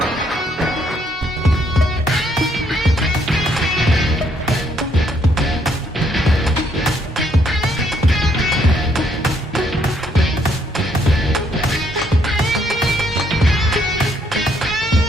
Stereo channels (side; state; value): both; normal; correlation 0.70